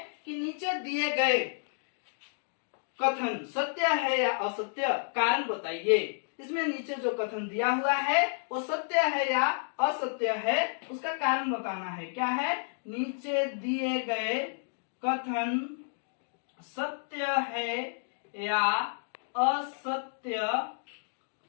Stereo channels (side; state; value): right; silent; digital silence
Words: कि नीचे दिए गए कथन सत्य है या असत्य, कारण बताइए। इसमें नीचे जो कथन दिया हुआ है वो सत्य है या असत्य है, उसका कारण बताना है। क्या है, नीचे दिए गए कथन सत्य है या असत्य,